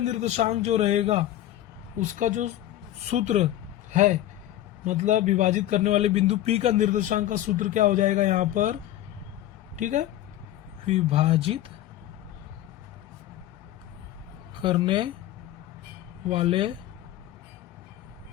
जो रहेगा उसका जो सूत्र है, मतलब विभाजित करने वाले बिंदु P का निर्देशांक का सूत्र क्या हो जाएगा यहाँ पर, ठीक है, विभाजित करने वाले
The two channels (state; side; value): quieter; right; 13.2 dB